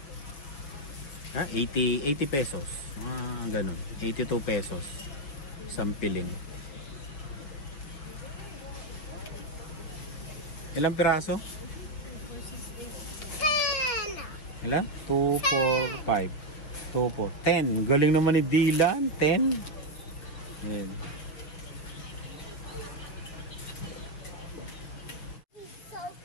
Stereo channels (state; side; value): late; right; 6.6 ms